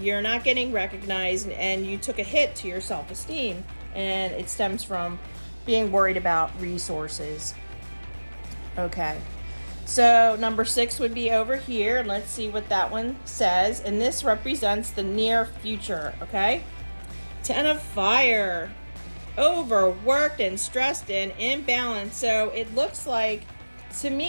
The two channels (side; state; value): both; inverted; correlation -1.00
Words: not getting recognized, and you took a hit to your self-esteem, and it stems from being worried about resources. Okay, so number 6 would be over here, and let's see what that one says. And this represents the near future, okay? 10 of Fire, overworked and stressed and imbalanced. So it looks like, to